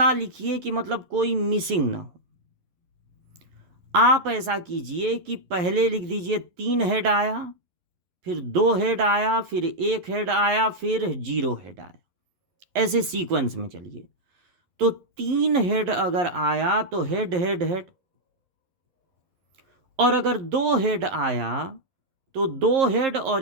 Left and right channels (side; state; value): left; late; 11 ms